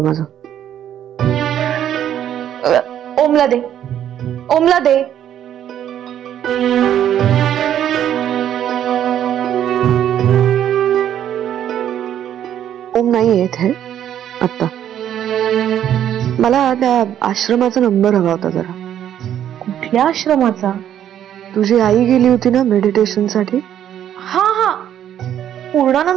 माझं. ओमला दे, ओमला दे. ओम नाही येत है आता. मला त्या आश्रमाचा नंबर हवा होता जरा. कुठल्या आश्रमाचा? तुझी आई गेली होती ना मेडिटेशन साठी. हा हा,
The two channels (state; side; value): quieter; left; 10.5 dB